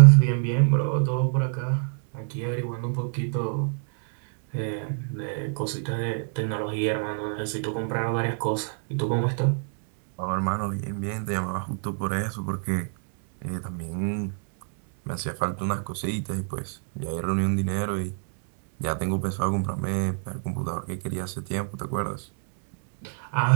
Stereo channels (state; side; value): silent; left; 60 dB below the other